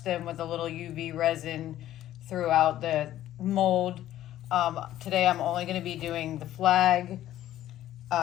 them with a little UV resin throughout the mold. Today I'm only going to be doing the flag.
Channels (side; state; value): right; quieter; 13.1 dB